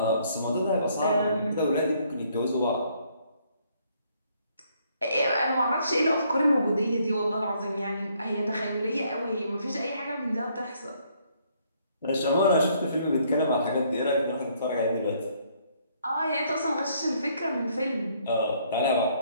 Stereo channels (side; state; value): both; inverted; correlation -0.67